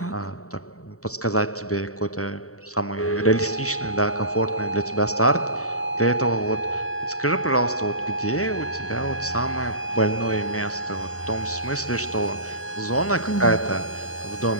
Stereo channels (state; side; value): late; right; 0.64 ms